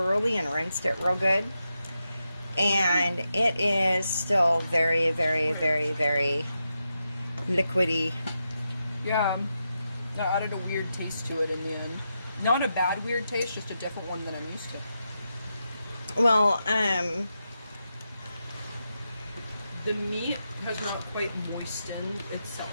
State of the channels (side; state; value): both; inverted; correlation -0.87